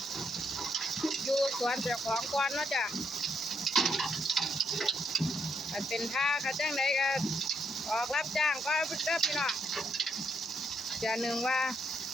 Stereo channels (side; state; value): both; normal; correlation 0.76